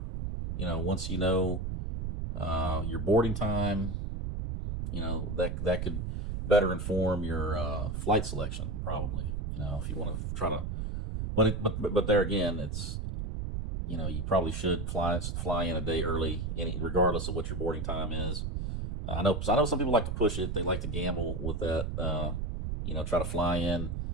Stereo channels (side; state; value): right; noise; rumble, 3 dB below the sound